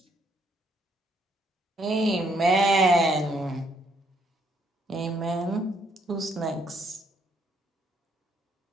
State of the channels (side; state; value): both; normal; correlation 0.70